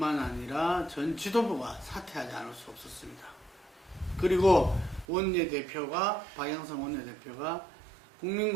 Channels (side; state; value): left; drops out; at 5.1 s